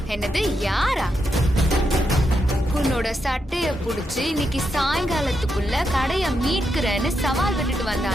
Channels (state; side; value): normal; both; correlation 0.83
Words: என்னது யாரா? உன்னோட சட்டைய புடிச்சு இன்னைக்கு சாயங்காலத்துக்குள்ள கடைய மீட்கிறேன்னு சவால் விட்டுட்டு